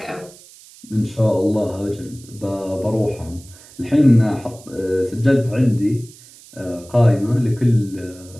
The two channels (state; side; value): noise; right; hiss, 22 dB below the sound